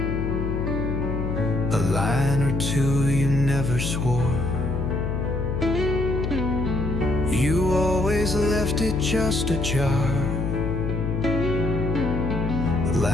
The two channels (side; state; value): left; noise; hum, 2 dB below the sound